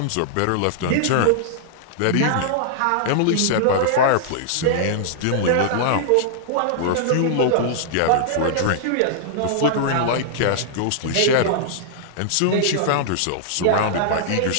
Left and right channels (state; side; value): different; both; correlation -0.01